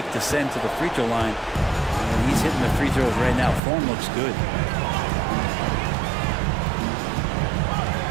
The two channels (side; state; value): left; drops out; at 3.6 s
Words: to send to the free throw line. And he's hitting the free throws right now. Form looks good.